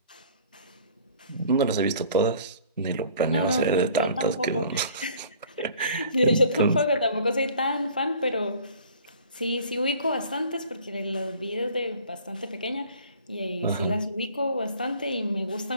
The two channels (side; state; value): both; inverted; correlation -0.51